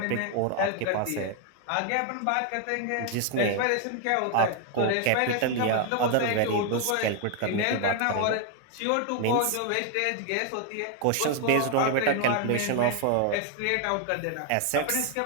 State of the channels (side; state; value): both; different; correlation 0.01